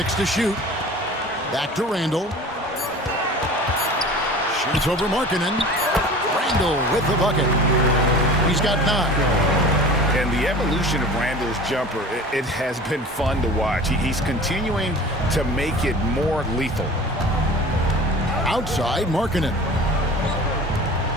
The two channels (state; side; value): normal; both; correlation 0.40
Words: to shoot. Back to Randle. Shoots over Markkanen. Randle with the bucket. He's got 9. And the evolution of Randle's jumper, it has been fun to watch. He's continuing to make it more lethal. Outside Markkanen.